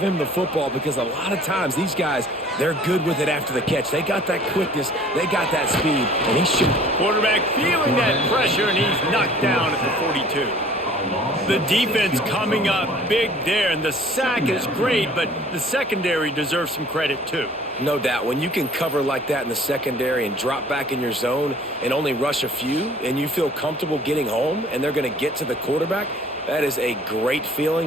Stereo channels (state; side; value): normal; both; correlation 0.52